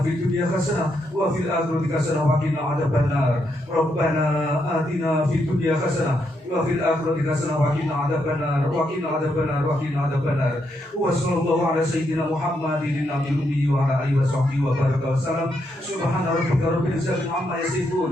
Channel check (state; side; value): normal; both; correlation 0.79